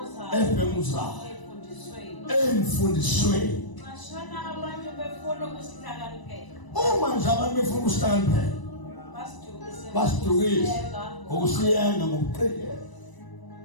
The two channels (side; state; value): right; late; 1.0 ms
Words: Ebhenguzayo. Emfundisweni. Mashana abantu befuna ukusihlakaniphela. Uma nje abantu befuna ukusihlakaniphela. Basidukise. Ngokusiyenga ngokuqikelela.